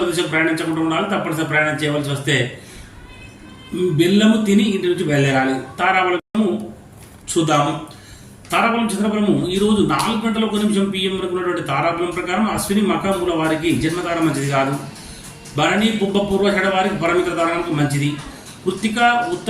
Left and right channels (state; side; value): identical; both; correlation 1.00